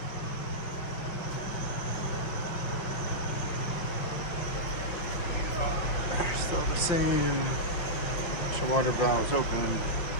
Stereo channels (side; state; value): right; late; 5.7 ms